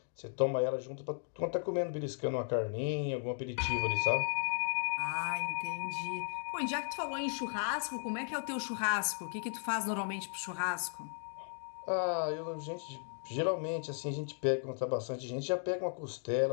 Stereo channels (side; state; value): right; silent; digital silence